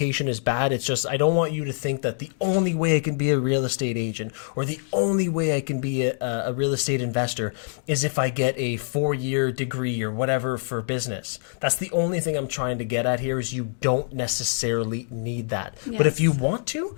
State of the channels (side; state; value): right; silent; digital silence